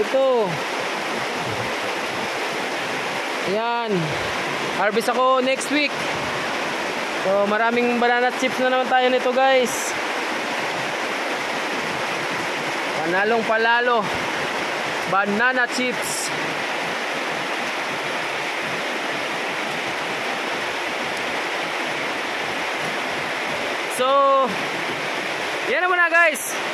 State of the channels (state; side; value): identical; both; correlation 1.00